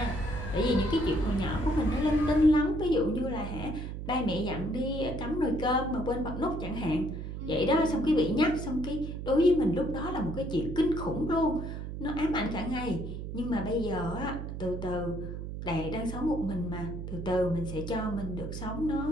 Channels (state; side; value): noise; right; hum, 7 dB below the sound